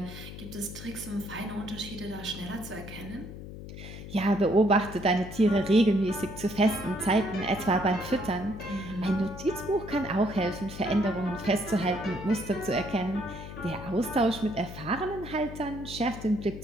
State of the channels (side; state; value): left; noise; hum, 11 dB below the sound